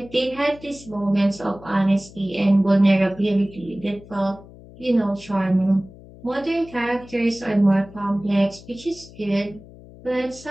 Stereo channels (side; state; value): left; noise; hum, 20 dB below the sound